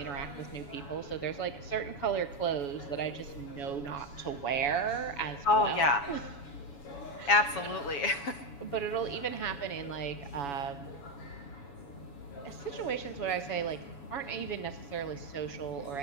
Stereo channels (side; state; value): right; late; 7.1 ms